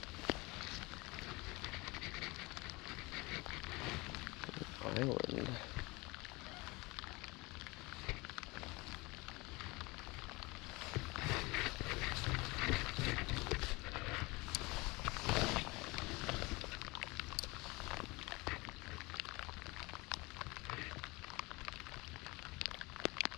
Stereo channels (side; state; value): right; quieter; 24.3 dB